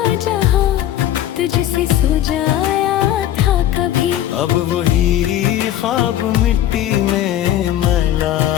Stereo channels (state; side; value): quieter; right; 12.2 dB